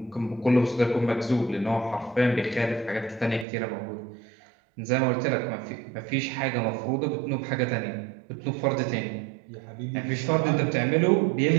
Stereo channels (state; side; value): drops out; left; at 3.5 s